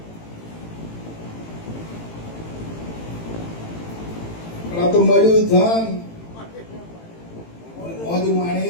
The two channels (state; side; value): late; right; 18 ms